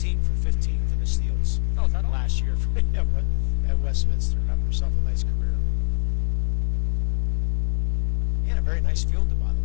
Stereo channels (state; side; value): silent; right; digital silence